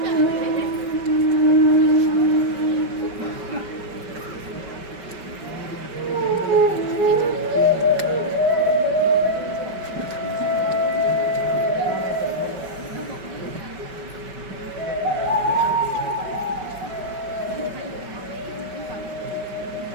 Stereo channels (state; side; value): late; left; 5.2 ms